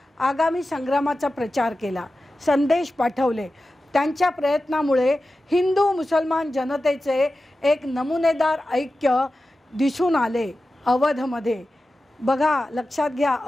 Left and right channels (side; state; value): both; normal; correlation 0.94